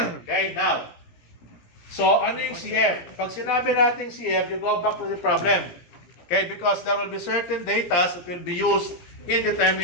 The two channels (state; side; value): late; right; 17 ms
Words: Okay, now, so ano yung CF? Pag sinabi natin CF, you go back to the problem. Okay, because there will be certain data that will be used in